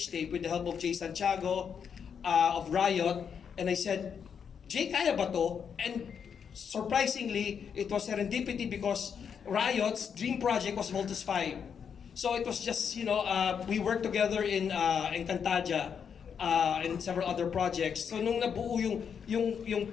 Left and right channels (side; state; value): right; quieter; 7.1 dB